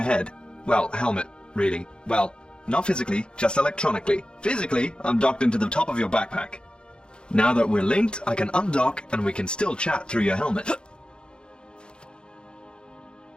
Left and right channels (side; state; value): right; late; 0.051 ms